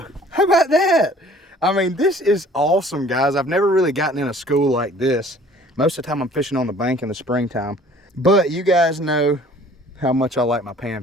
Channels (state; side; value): normal; both; correlation 0.52